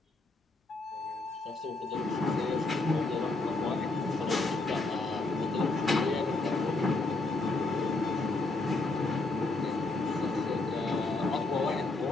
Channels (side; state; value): right; quieter; 3.3 dB